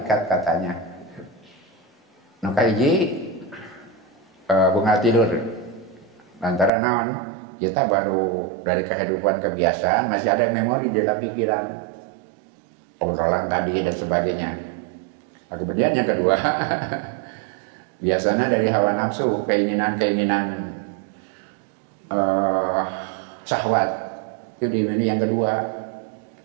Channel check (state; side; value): drops out; left; at 6.7 s